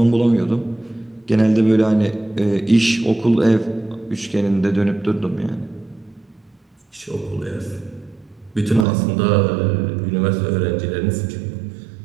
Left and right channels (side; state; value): left; drops out; at 8.8 s